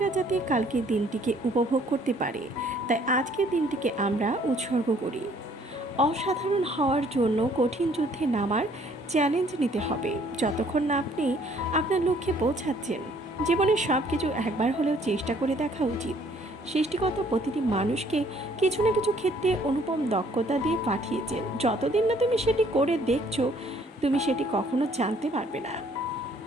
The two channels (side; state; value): both; normal; correlation 0.61